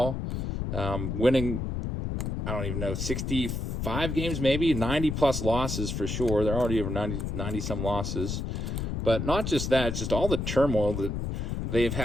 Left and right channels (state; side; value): noise; left; rumble, 3 dB below the sound